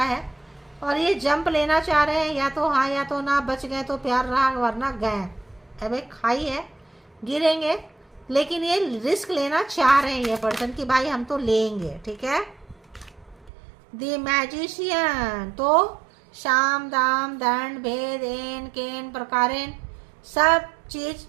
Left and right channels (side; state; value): left; drops out; at 13.5 s